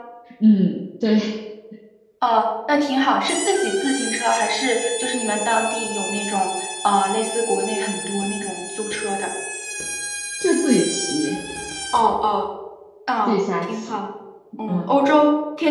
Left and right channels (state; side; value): identical; both; correlation 1.00